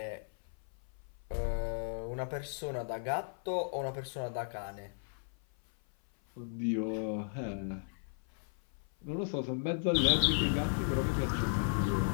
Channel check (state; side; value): silent; right; 54 dB below the other